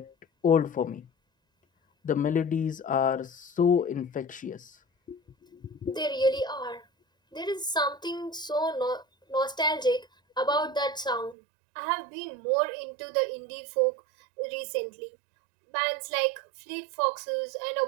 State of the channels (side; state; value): left; drops out; at 11.4 s